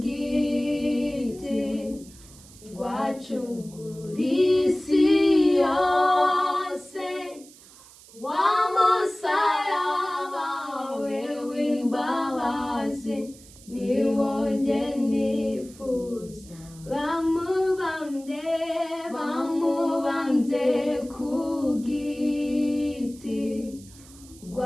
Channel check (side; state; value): right; noise; hiss, 22 dB below the sound